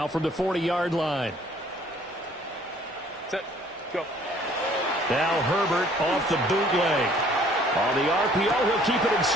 from the 40-yard line. Set. Go. Now Herbert off the bootleg. On the RPO, he'll keep it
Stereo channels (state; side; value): normal; both; correlation 0.57